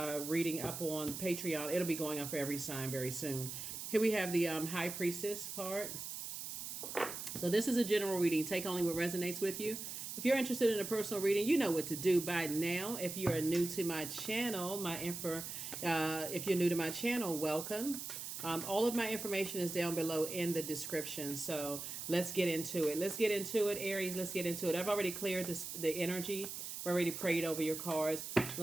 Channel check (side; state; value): right; noise; hiss, 7 dB below the sound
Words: reading up on Patreon. It'll be going on for every sign very soon. Here we have the High Priestess card. So this is a general reading. Take only what resonates with you. If you're interested in a personal reading, you know what to do by now. If you are new to my channel, if you're new to my channel, welcome. All of my information is down below in the description. So let's get into it. Let's get into it, Aries. Let's get into it. I've already cleared the energy. I've already prayed over your cards.